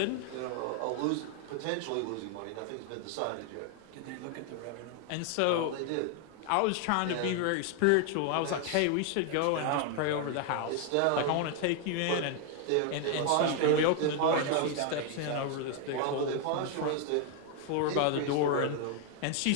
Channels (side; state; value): both; different; correlation 0.00